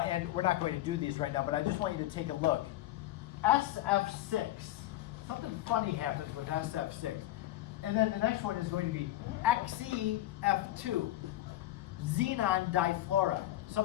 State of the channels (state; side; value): quieter; right; 15.2 dB